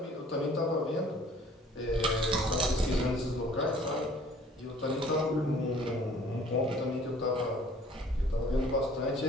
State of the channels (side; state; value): both; normal; correlation 0.54